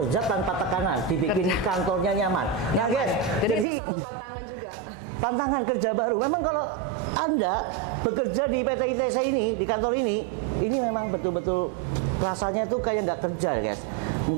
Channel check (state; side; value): drops out; left; at 3.7 s